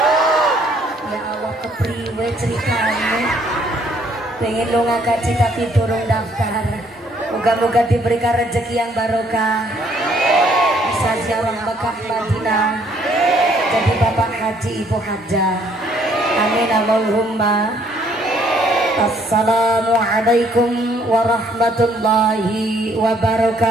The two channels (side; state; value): both; normal; correlation 0.65